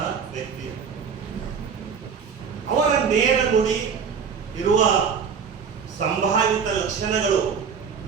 ವ್ಯಕ್ತಿ. ಅವರ ನೇರ ನುಡಿ ಇರುವ ಸಂಭಾವಿತ ಲಕ್ಷಣಗಳು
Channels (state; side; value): quieter; left; 6.4 dB